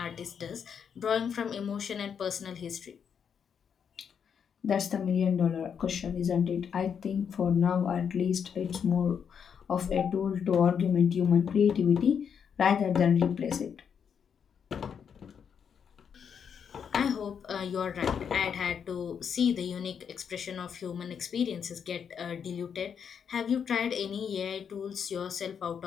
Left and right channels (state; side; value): quieter; right; 7.3 dB